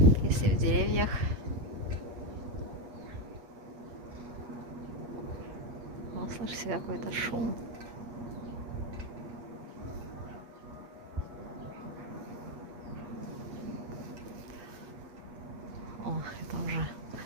если в деревьях. Вот, слышите, какой-то шум. О, это уже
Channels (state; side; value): late; left; 8.5 ms